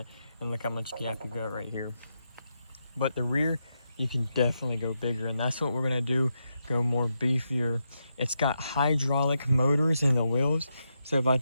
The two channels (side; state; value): both; inverted; correlation -0.84